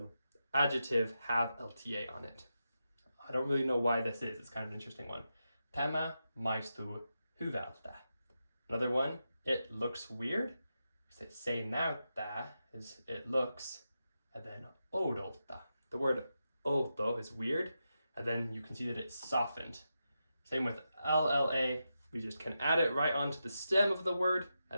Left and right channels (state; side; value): inverted; both; correlation -0.88